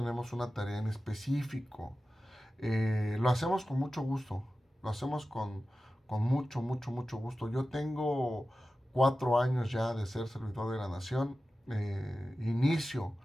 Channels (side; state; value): both; normal; correlation 0.94